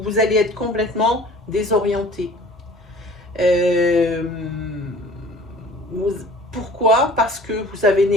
vous allez être complètement désorienté. Pourquoi? Parce que vous avez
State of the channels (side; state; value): both; normal; correlation 0.48